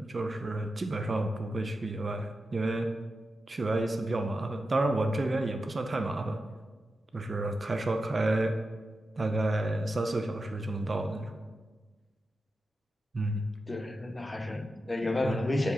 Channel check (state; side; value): normal; both; correlation 0.90